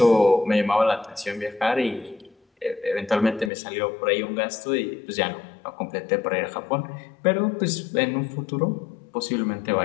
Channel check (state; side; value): drops out; right; at 3.5 s